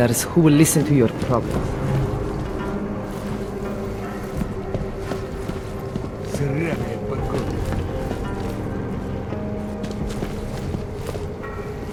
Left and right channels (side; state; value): both; identical; correlation 1.00